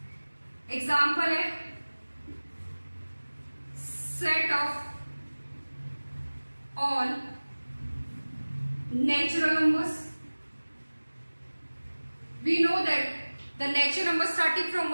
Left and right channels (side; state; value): both; inverted; correlation -1.00